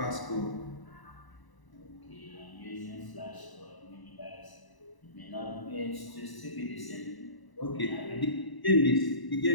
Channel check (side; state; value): right; late; 1.0 ms